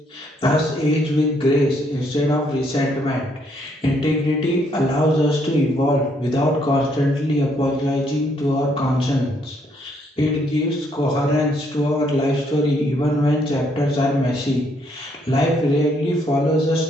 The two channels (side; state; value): both; normal; correlation 0.70